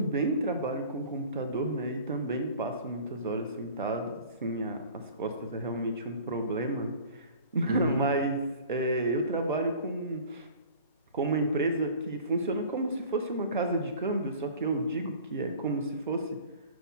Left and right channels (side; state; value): both; inverted; correlation -0.44